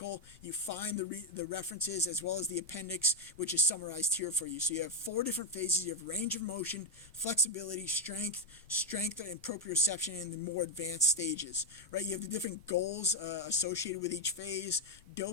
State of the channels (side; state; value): both; normal; correlation 0.02